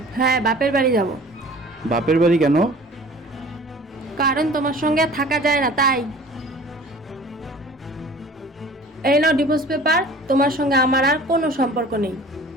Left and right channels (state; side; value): normal; both; correlation 0.45